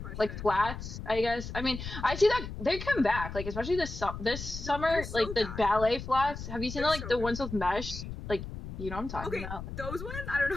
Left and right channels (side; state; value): left; noise; rumble, 8 dB below the sound